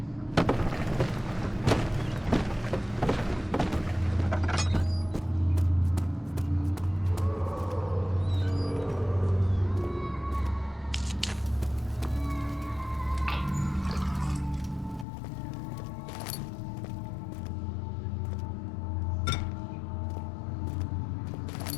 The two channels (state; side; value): drops out; right; at 15.1 s